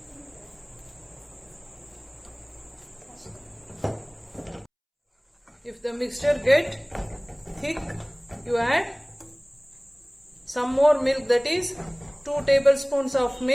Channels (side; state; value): both; identical; correlation 1.00